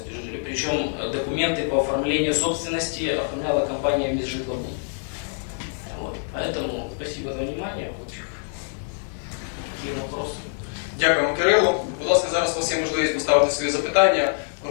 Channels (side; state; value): right; silent; 62 dB below the other